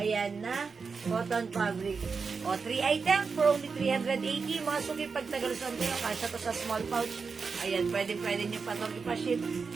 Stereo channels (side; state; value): left; quieter; 5.1 dB